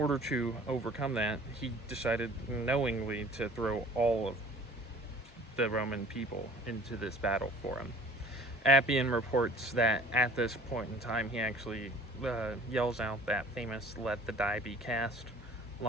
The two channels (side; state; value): both; normal; correlation 0.49